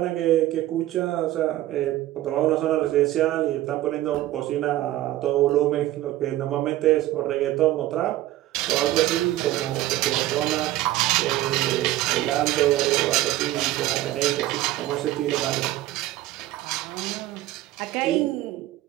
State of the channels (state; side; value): quieter; left; 15.2 dB